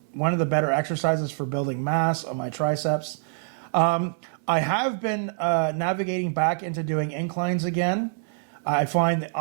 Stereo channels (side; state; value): left; silent; 61 dB below the other